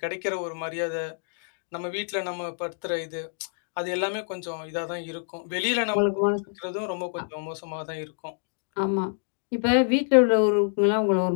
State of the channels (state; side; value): silent; right; 60 dB below the other